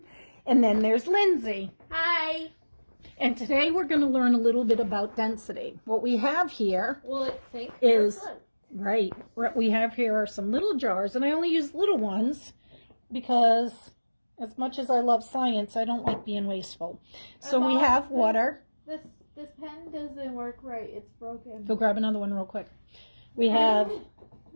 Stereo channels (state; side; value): inverted; both; correlation -1.00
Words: then there's Lindsay. Hi. And today we're going to learn a little bit about density. What we have here Will it sink? is, right, what we have here are some little jars, and I only use little ones because as much as I love science, I don't like being wasteful. So we have water. This pen doesn't work right. It's broken. Go grab another one real quick. We have